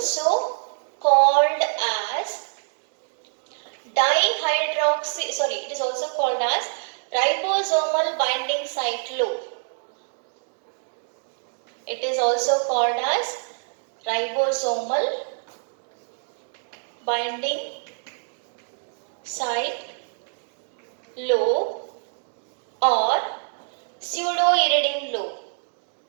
called as ribosomal binding site loop. It is also called as ribosomal binding site loop or pseudo-iridine loop.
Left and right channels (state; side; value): silent; left; digital silence